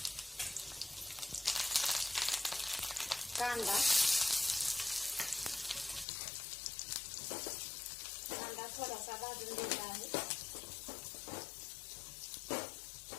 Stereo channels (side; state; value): right; drops out; at 6.1 s